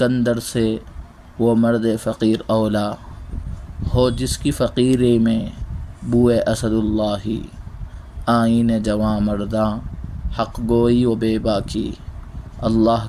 سے وہ مرد فقیر اولا، ہو جس کی فقیری میں بوئے اسد اللہ۔ آئین جواں مرداں حق گوئی و بے باکی، اللہ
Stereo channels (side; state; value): both; identical; correlation 1.00